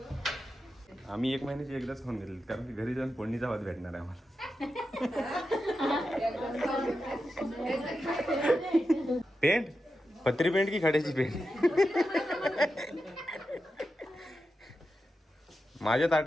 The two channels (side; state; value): both; normal; correlation 0.89